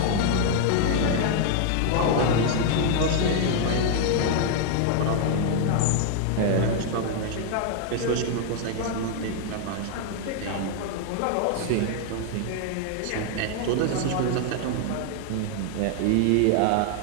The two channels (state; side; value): different; both; correlation 0.00